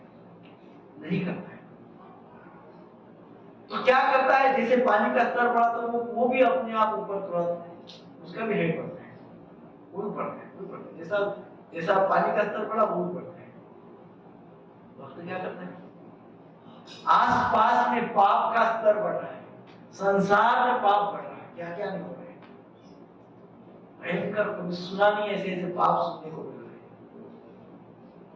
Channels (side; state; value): both; identical; correlation 1.00